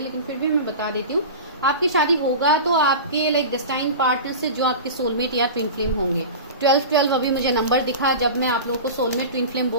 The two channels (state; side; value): inverted; both; correlation -0.31